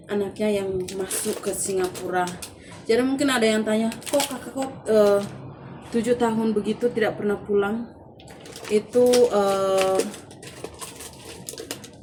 anaknya yang masuk ke Singapura. Jadi mungkin ada yang tanya, kok kakak 7 tahun begitu tidak pernah pulang? Itu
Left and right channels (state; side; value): identical; both; correlation 1.00